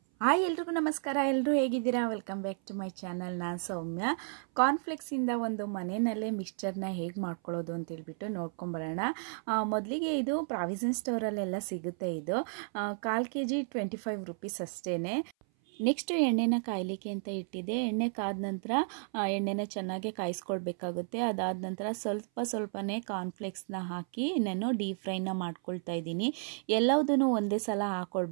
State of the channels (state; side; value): silent; left; 56 dB below the other